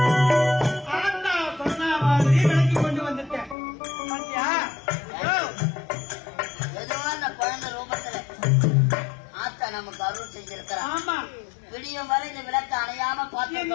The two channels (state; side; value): drops out; right; at 3.6 s